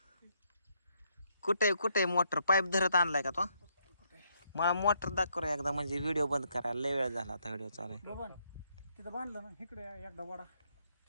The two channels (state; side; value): inverted; both; correlation -0.74